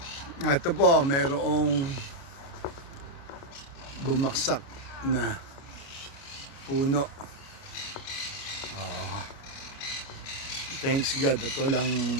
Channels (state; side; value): late; right; 29 ms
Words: Ito po, mayroong bumaksak na puno. Thanks God, ito lang